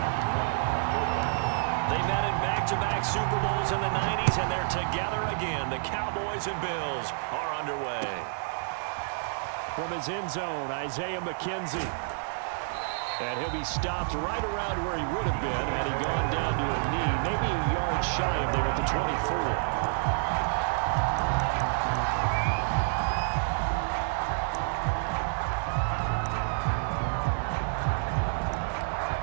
They met in back-to-back Super Bowls in the 90s, and they're together again. The Cowboys and Bills are underway. From his end zone, Isaiah McKenzie. And he'll be stopped right around where he would have been had he gone down to a knee, maybe a yard shy of there at the 24.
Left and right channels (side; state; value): left; silent; digital silence